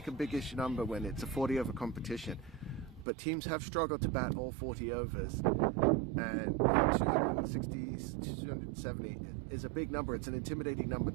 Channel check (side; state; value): left; drops out; at 3.1 s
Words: a biggish number when it's a 40 over competition, but teams have struggled to bat all 40 overs, and 260, 270 is a big number. It's an intimidating number